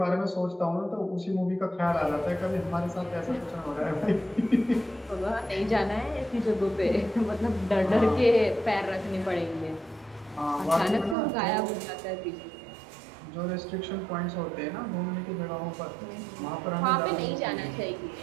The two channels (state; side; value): drops out; left; at 11.2 s